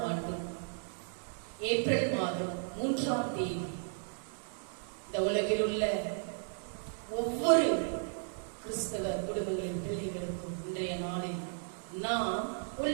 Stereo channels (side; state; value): left; silent; digital silence